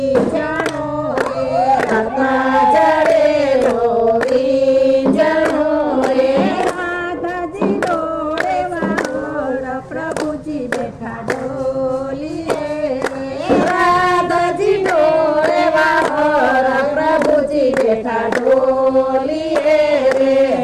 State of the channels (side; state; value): both; identical; correlation 1.00